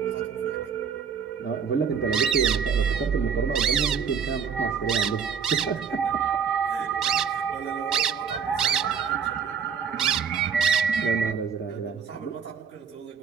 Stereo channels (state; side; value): quieter; left; 6.9 dB